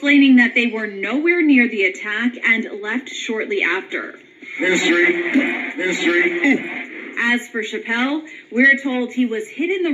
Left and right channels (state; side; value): identical; both; correlation 1.00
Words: that they were nowhere near the attack and left shortly after. History. As for Chappelle, we're told he was hit in the